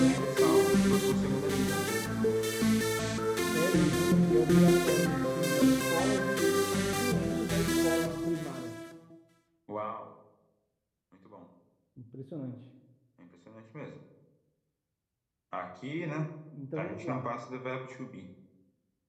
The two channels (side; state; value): both; identical; correlation 1.00